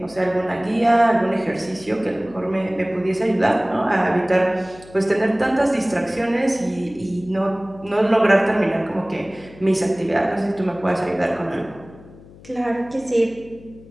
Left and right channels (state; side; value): noise; left; hum, 21 dB below the sound